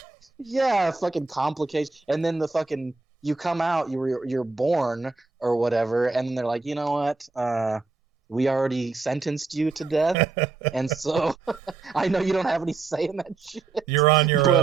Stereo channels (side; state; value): left; quieter; 4.1 dB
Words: Yeah, fucking complication. And then the fucking you come out, you're born or whatever, and they're like, you know what? We already sentenced you to death, and so I know you don't have any say in that shit, You're on your